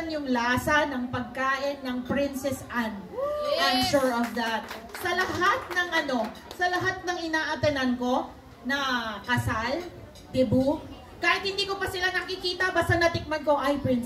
yung lasa ng pagkain ng Princess Anne. I'm sure of that. Sa lahat ng sa lahat ng inaatenan ko na kasal, debut, kahit hindi ko pa sila nakikita, basta natikman ko, ay,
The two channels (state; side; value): identical; both; correlation 1.00